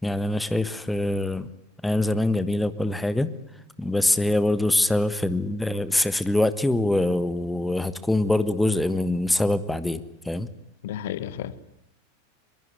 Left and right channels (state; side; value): normal; both; correlation 0.91